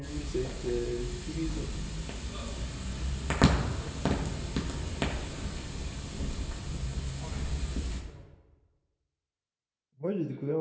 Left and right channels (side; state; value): both; identical; correlation 1.00